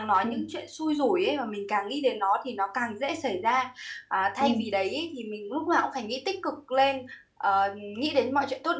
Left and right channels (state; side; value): identical; both; correlation 1.00